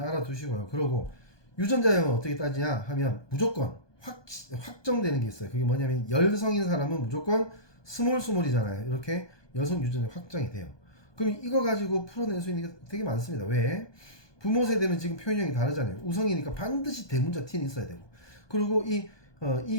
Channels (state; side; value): late; right; 1.2 ms